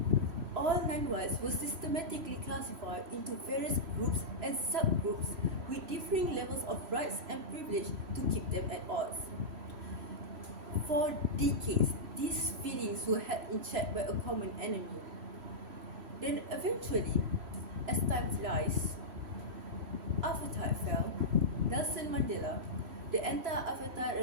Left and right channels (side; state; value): left; late; 3.1 ms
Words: All non-whites were systematically classified into various groups and subgroups with differing levels of rights and privilege to keep them at odds. For decades, these feelings were held in check by a common enemy. Then eventually, as time flies, apartheid fell. Nelson Mandela, the